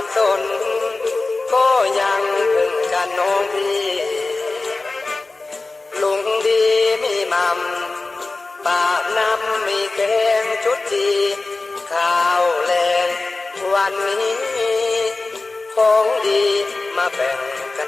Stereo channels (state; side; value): quieter; right; 3.5 dB